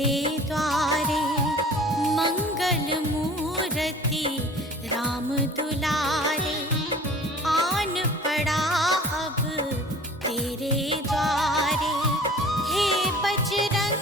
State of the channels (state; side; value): normal; both; correlation 0.45